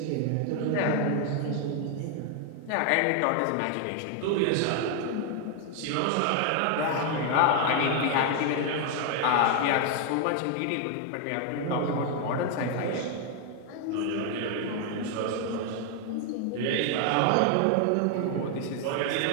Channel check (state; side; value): different; both; correlation 0.01